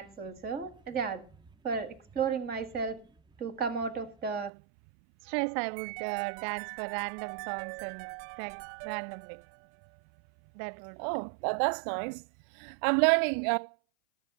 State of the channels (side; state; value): left; drops out; at 4.5 s